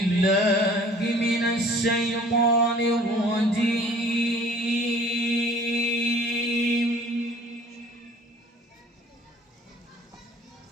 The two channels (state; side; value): normal; both; correlation 0.51